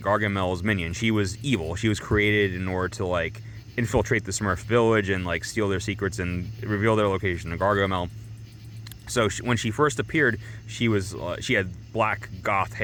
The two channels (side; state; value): both; identical; correlation 1.00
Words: minion. She was evil. She was created in order to like infiltrate the Smurf village and like steal their secrets and reveal their location to Gargamel. So when she first appeared, she had black goth